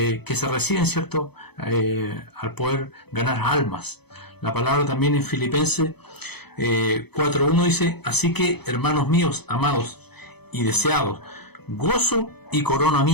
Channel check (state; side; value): late; right; 0.98 ms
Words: se reciben, ¿cierto?, al poder ganar almas. La palabra también en Filipenses 4:1 dice: así que, hermanos míos, amados y deseados, gozo y corona